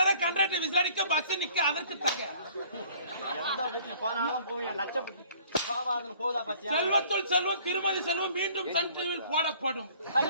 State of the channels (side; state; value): both; inverted; correlation -0.55